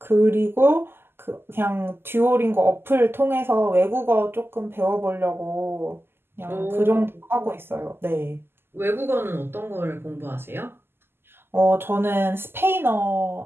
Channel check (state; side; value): late; left; 0.11 ms